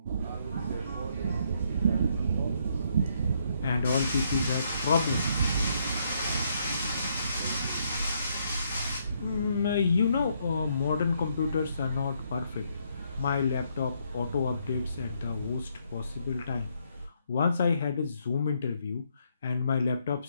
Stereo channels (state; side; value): inverted; both; correlation -0.73